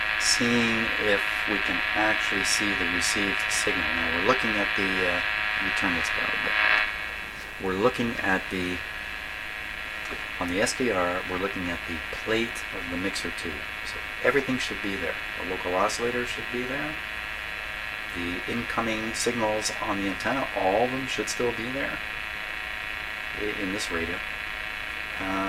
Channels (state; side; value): identical; both; correlation 1.00